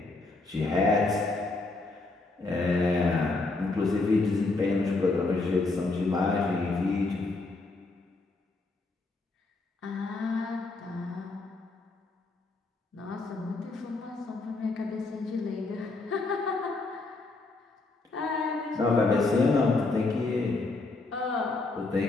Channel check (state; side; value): quieter; right; 3.4 dB